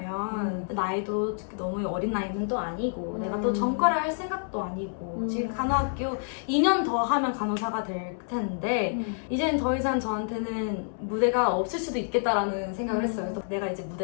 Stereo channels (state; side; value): silent; right; 59 dB below the other